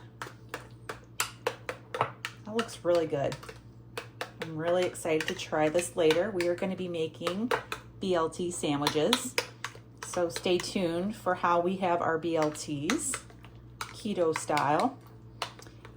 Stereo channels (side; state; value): both; identical; correlation 1.00